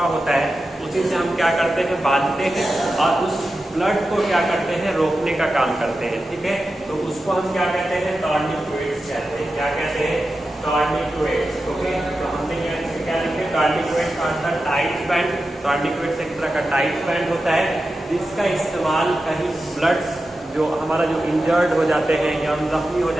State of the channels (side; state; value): both; normal; correlation 0.91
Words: होता है उसी से हम क्या करते हैं? बांधते हैं और उस ब्लड को क्या करते हैं? रोकने का काम करते हैं, ठीक है। तो उसको हम क्या कहते हैं? टॉर्निक्वेट्स कहते हैं। क्या कहते हैं? टॉर्निक्वेट्स, ओके। तो हमने यहाँ क्या लिखे? टॉर्निक्वेट्स आर द टाइट बैंड। टॉर्निक्वेट्स एक तरह का टाइट बैंड होता है जिसका इस्तेमाल कहीं ब्लड्स जो हमारा जो इंजर्ड हो जाते हैं या हम जख्मी हो